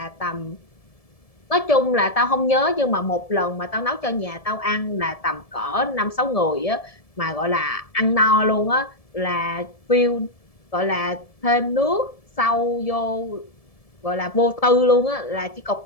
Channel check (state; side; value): late; right; 1.7 ms